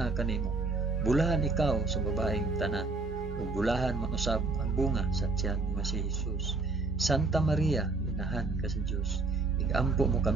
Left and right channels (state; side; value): quieter; left; 3.6 dB